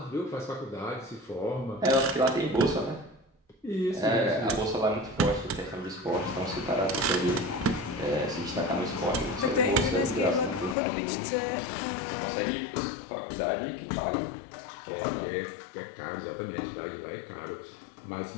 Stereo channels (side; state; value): right; drops out; at 10.8 s